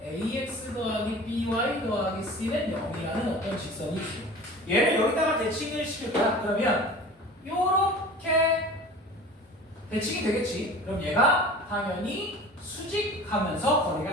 ax 더하기 by 더하기 c는 0이라는 어떤 직선이 있어요. 얘를 여기다가 대칭을 시킬 거야. 그러면 요렇게 대칭이 되겠지. 그럼 얘가 당연히 수직하면서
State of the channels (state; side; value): normal; both; correlation 0.39